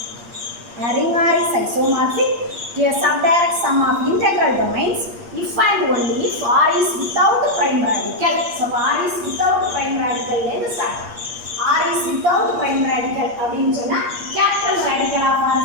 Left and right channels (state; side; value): late; left; 8.5 ms